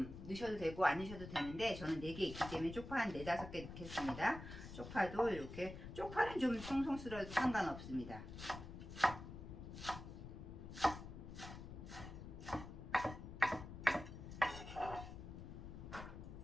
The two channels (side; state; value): left; noise; rumble, 10 dB below the sound